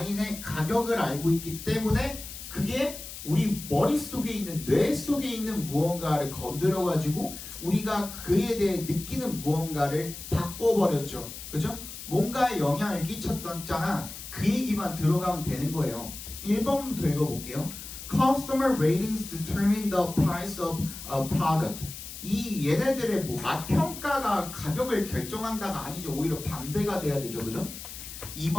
가격을 알고 있기 때문에 그게 우리 머릿속에 있는 뇌 속에 있는 무언가를 건드려 가지고 우리가 그에 대해 느끼는 무언가를 바꿔버렸죠. 그죠? 뭔가에 영향을 끼쳤잖아. 그 얘기만 들어가면 되는 거예요. 1번부터 읽어볼게요. Customer ratings determine the price of a product. 이 얘네들의 뭐 맛평가가 가격을 결정한다가 아니죠. 오히려 반대가 돼야 되죠. 그죠?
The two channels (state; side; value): noise; left; hiss, 11 dB below the sound